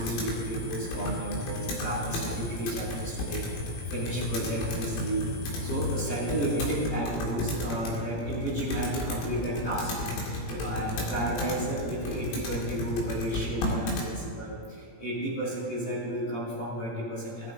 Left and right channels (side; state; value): right; late; 17 ms